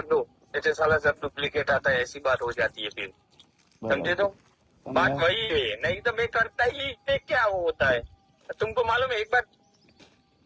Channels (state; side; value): identical; both; correlation 1.00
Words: दो, ऐसे साला सब डुप्लीकेट आता है, ऐसी बात हो जाती है फिर, समझे? तो बात वही है, नहीं तो मैं करता ही नहीं, क्या वो होता है तुमको मालूम है?